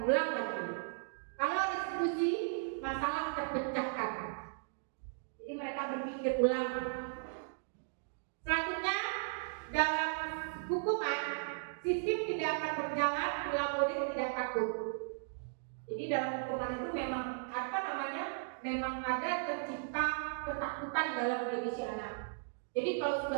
ulang lagi. Kalau restitusi, masalah terpecahkan, jadi mereka berpikir ulang. Selanjutnya, dalam hukuman, sistem tidak akan berjalan bila murid tidak takut. Jadi dalam hukuman itu memang memang ada tercipta ketakutan dalam diri si anak. Jadi kalau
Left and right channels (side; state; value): left; silent; digital silence